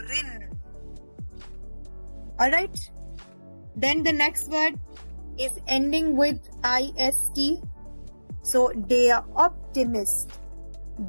Alright? Then the next word is ending with ist. So, der Optimist.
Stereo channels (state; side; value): inverted; both; correlation -1.00